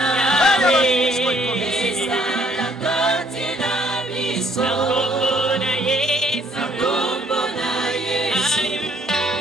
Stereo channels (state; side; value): normal; both; correlation 0.64